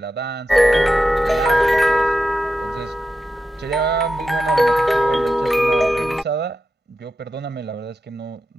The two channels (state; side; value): normal; both; correlation 0.90